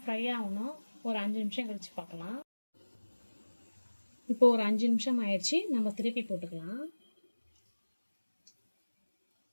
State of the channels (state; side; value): inverted; both; correlation -1.00